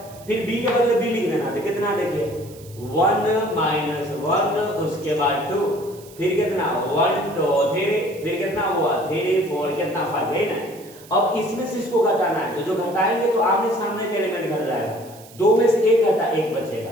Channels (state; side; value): noise; right; hiss, 22 dB below the sound